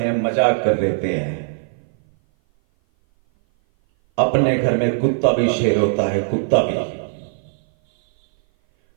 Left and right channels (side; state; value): left; silent; 58 dB below the other